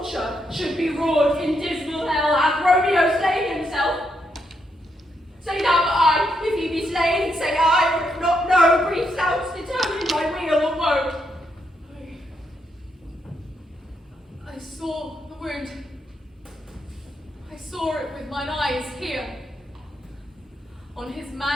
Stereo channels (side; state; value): both; normal; correlation 0.79